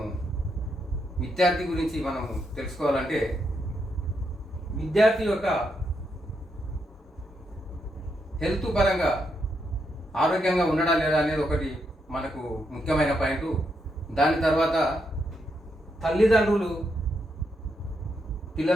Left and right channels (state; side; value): normal; both; correlation 0.80